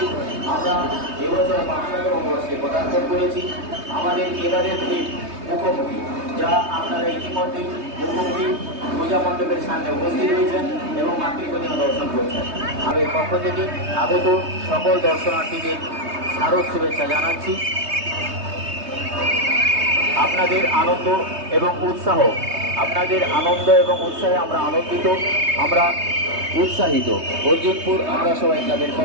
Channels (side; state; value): left; late; 3.2 ms